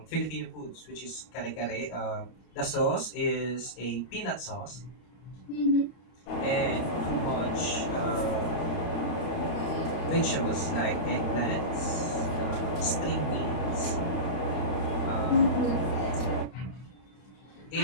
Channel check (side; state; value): right; late; 31 ms